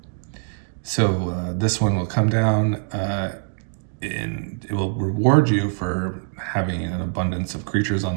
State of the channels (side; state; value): left; silent; digital silence